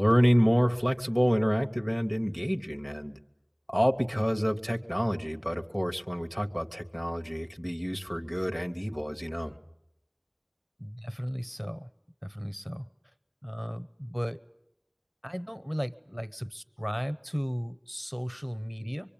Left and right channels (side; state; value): both; identical; correlation 1.00